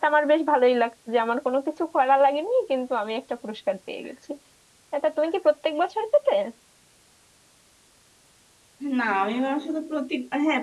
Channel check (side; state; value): both; identical; correlation 1.00